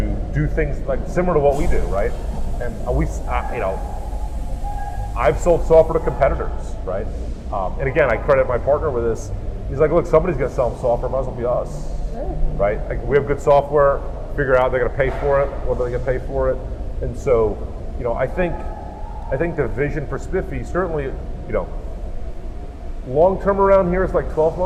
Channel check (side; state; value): both; identical; correlation 1.00